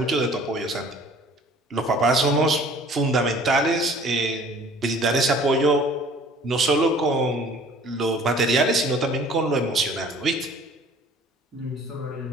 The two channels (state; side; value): normal; both; correlation 0.51